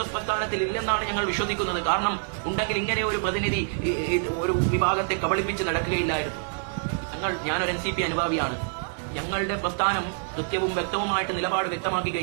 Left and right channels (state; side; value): silent; left; digital silence